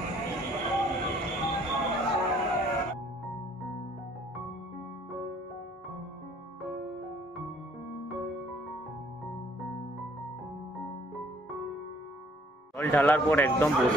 জল ঢালার পর একদম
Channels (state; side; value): normal; both; correlation 0.60